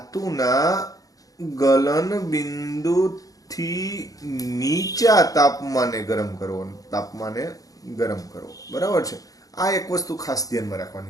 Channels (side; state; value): right; late; 0.17 ms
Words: ગલન બિંદુથી નીચા તાપમાને ગરમ કરવો. બરાબર છે. આ એક વસ્તુ ખાસ ધ્યાનમાં